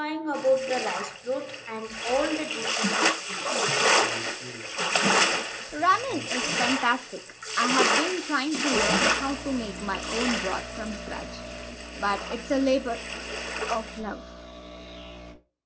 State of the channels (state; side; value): identical; both; correlation 1.00